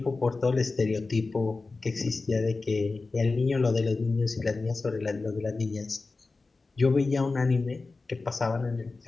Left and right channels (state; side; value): quieter; right; 3.8 dB